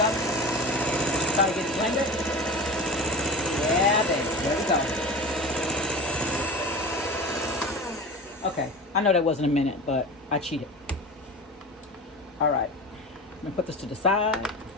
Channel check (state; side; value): normal; both; correlation 0.31